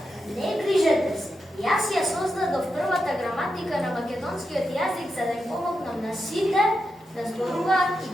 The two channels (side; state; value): both; normal; correlation 0.87